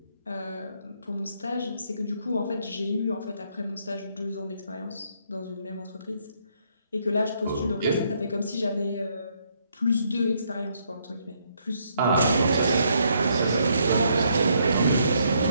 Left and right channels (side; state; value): both; inverted; correlation -0.72